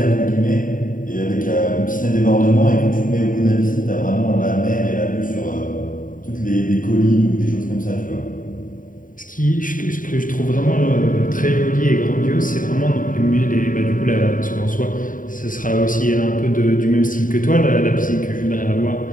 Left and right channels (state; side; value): late; right; 0.39 ms